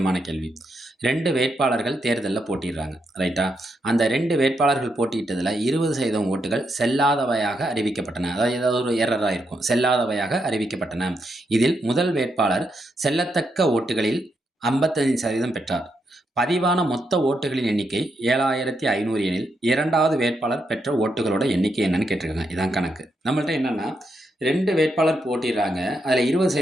கேள்வி. 2 வேட்பாளர்கள் தேர்தலில் போட்டிடுறாங்க, ரைட்டா? அந்த 2 வேட்பாளர்கள் போட்டியிட்டதில் 20% ஓட்டுகள் செல்லாதவையாக அறிவிக்கப்பட்டன. அதாவது ஏதாவது ஒரு எரராக இருக்கும், செல்லாதவையாக அறிவிக்கப்பட்டன. இதில் முதல் வேட்பாளர் செல்லத்தக்க ஓட்டுகளில் 55% பெற்றார். பதிவான மொத்த ஓட்டுகளின் எண்ணிக்கை 7500 எனில் இரண்டாவது வேட்பாளர் பெற்ற ஓட்டுகளோட எண்ணிக்கை என்னன்னு கேட்டிருக்காங்க. இதான் கணக்கு. நம்மள்ட்ட என்னன்னா 2 வேட்பாளர் போட்டிடுறாங்க. அதில்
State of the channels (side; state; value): both; normal; correlation 0.81